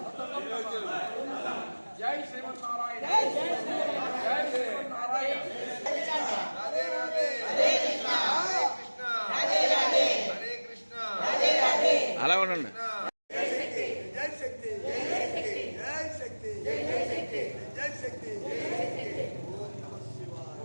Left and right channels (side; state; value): both; inverted; correlation -1.00